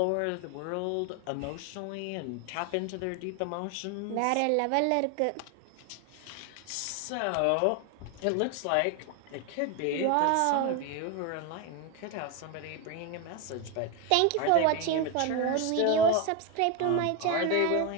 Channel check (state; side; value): different; both; correlation 0.02